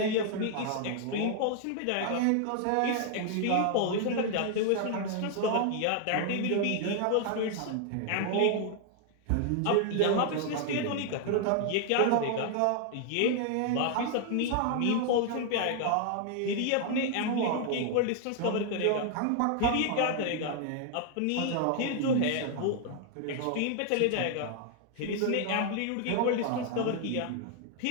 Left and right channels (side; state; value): both; different; correlation 0.00